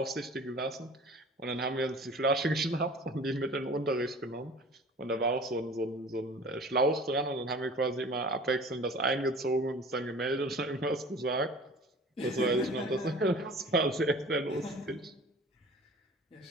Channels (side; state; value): both; normal; correlation 0.44